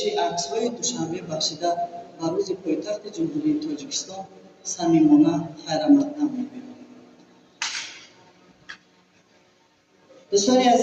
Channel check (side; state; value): both; identical; correlation 1.00